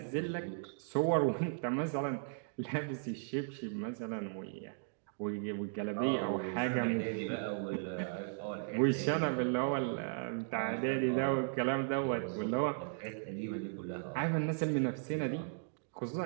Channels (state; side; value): silent; left; digital silence